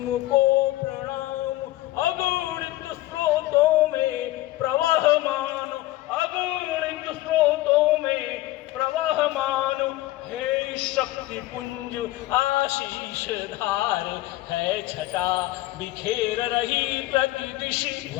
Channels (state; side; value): quieter; right; 17.1 dB